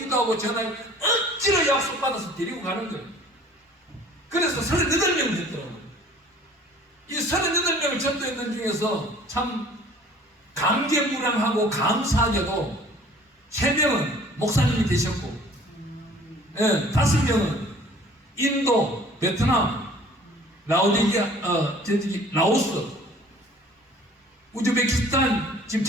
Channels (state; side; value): normal; both; correlation 0.51